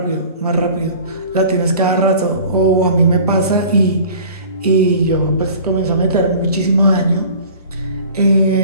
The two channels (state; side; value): inverted; both; correlation -0.44